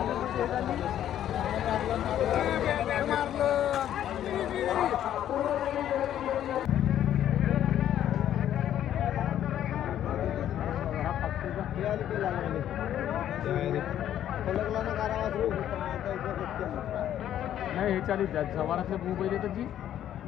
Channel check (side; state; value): right; quieter; 11.1 dB